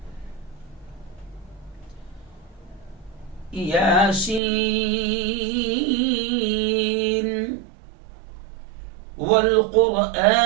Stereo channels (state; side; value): drops out; left; at 4.4 s